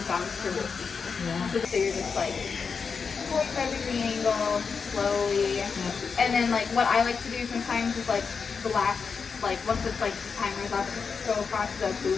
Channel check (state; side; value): quieter; right; 5.5 dB